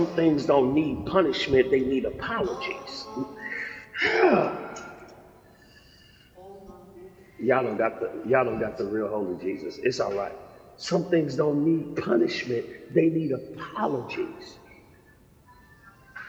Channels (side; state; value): both; identical; correlation 1.00